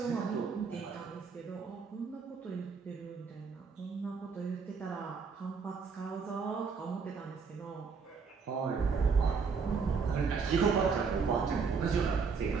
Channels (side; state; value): left; quieter; 5.4 dB